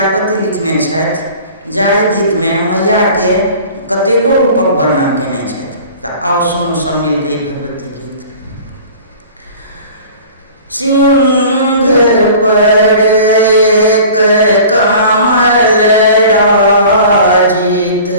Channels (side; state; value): both; inverted; correlation -0.44